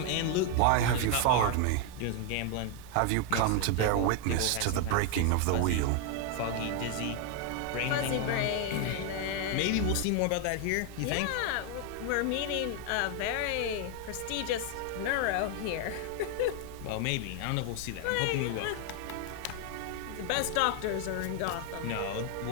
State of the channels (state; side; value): different; both; correlation 0.01